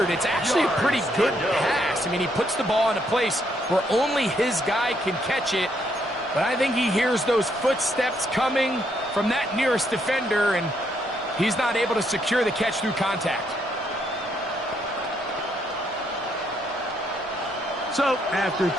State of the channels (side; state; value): both; normal; correlation 0.73